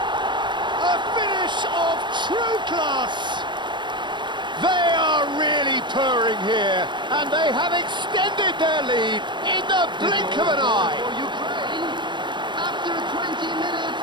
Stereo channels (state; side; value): late; left; 0.23 ms